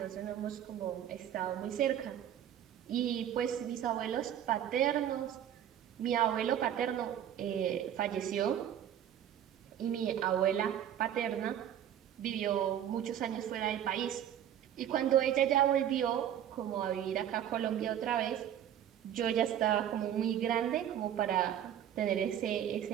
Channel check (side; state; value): left; quieter; 10.4 dB